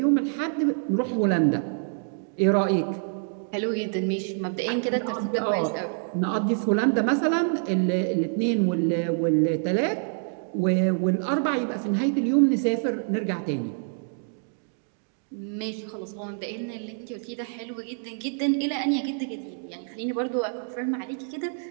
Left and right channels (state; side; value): silent; left; 61 dB below the other